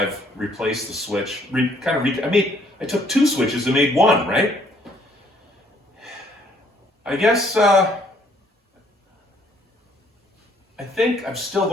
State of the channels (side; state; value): both; normal; correlation 0.64